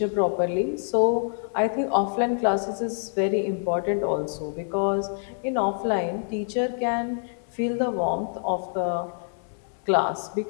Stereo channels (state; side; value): silent; right; digital silence